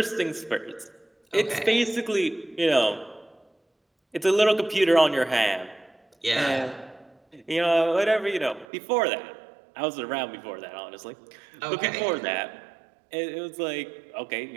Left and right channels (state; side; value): drops out; left; at 8.7 s